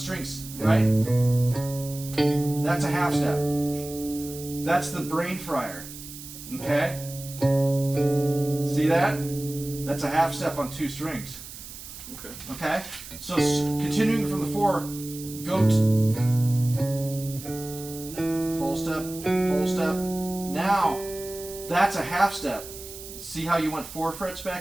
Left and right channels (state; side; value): noise; right; hiss, 13 dB below the sound